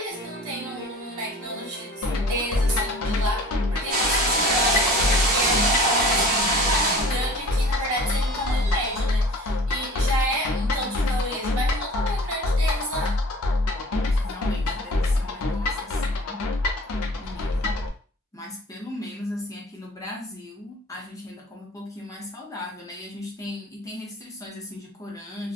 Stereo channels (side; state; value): both; normal; correlation 0.44